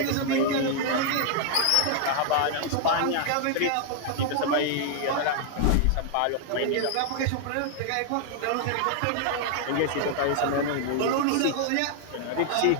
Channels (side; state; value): both; different; correlation 0.00